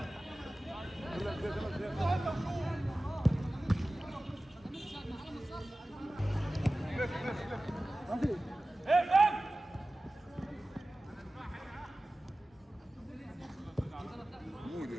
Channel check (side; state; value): both; normal; correlation 0.96